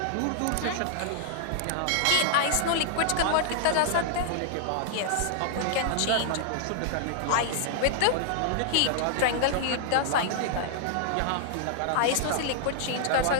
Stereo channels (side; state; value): both; different; correlation -0.01